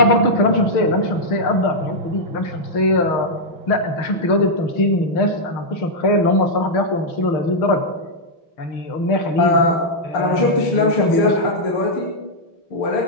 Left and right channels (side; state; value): right; late; 6.5 ms